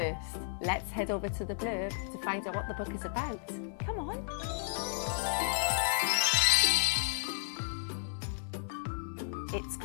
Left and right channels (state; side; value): silent; right; digital silence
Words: let's head over to the blurb to find out what the book is about. Come on. It's